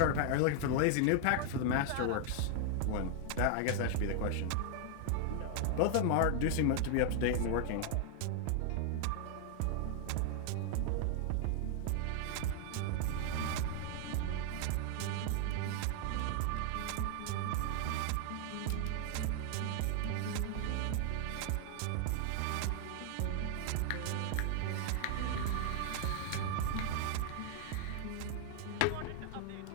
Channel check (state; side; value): different; both; correlation 0.00